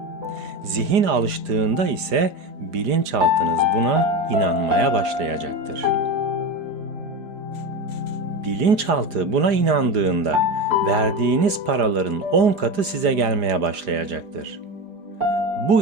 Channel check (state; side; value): late; left; 4.9 ms